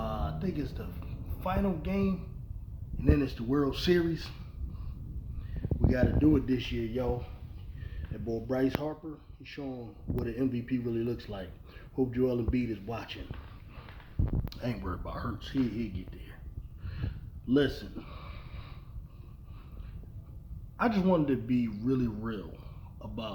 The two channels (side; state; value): both; identical; correlation 1.00